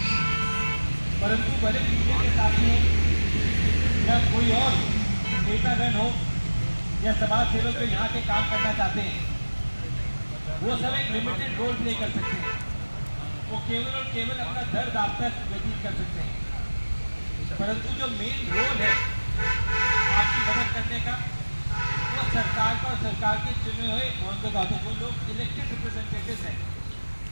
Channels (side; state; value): both; inverted; correlation -1.00